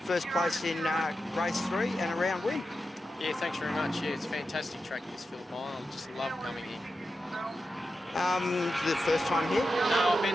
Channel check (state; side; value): normal; both; correlation 0.90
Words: first place in race 3 and a round win. Yeah, thanks very much. Yeah, it's a fantastic track, this Phillip Island. I just love coming here. The first time here? No, I've